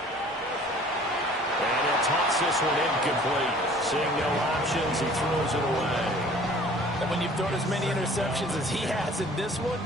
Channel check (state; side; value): normal; both; correlation 0.50